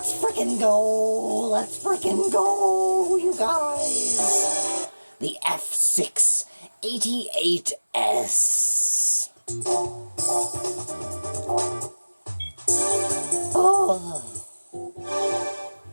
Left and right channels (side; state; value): both; inverted; correlation -1.00